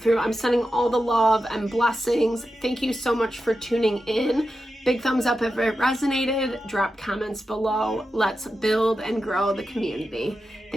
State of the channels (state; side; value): normal; both; correlation 0.90